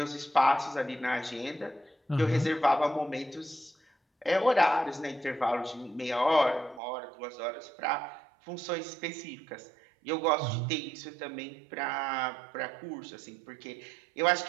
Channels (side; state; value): left; drops out; at 6.8 s